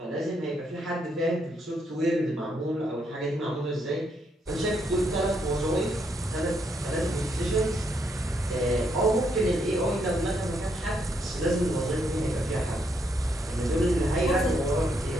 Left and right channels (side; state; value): both; normal; correlation 0.76